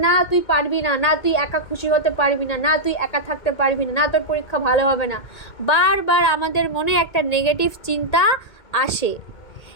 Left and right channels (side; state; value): right; late; 2.2 ms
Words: না তুই পারবি না, না তুই একা খুশি হতে পারবি না, না তুই একা থাকতে পারবি না, না তোর পরীক্ষা ভালো হবে না। বারবার আমাদের মনে একটা নেগেটিভ চিন্তা আসে।